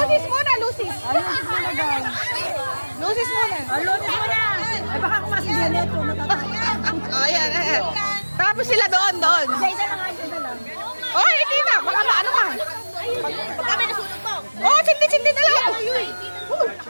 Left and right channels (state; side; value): inverted; both; correlation -1.00